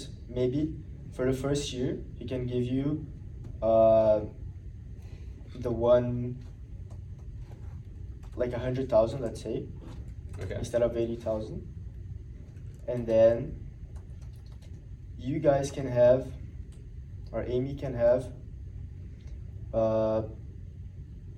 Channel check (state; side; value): identical; both; correlation 1.00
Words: maybe for the first year he can give you uh, the one like 100,000, let's say, Okay. instead of 80,000, and then you guys can have, or Amy can have. No,